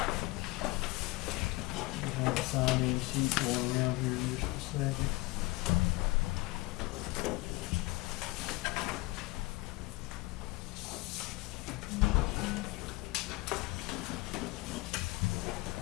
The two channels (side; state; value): right; quieter; 22.0 dB